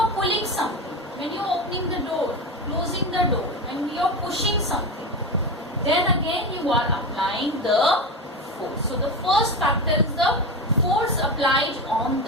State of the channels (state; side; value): normal; both; correlation 0.21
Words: pulling something, when you are opening the door, closing the door, when you are pushing something, then again you are applying the force. So the first factor is the force applied on